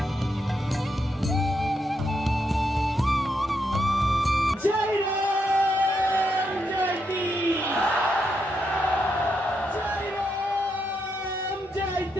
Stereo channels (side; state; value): both; normal; correlation 0.81